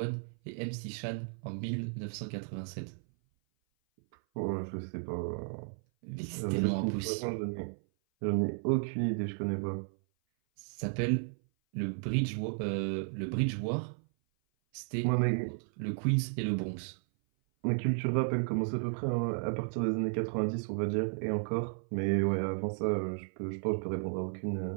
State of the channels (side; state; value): left; silent; 55 dB below the other